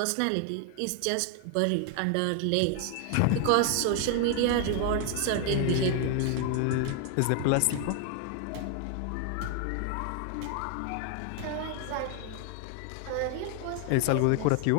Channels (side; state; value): both; different; correlation 0.00